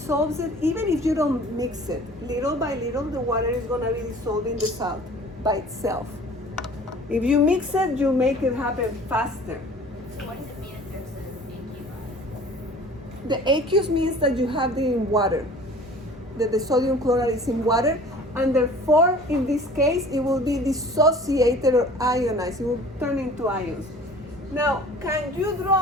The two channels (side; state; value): both; normal; correlation 0.47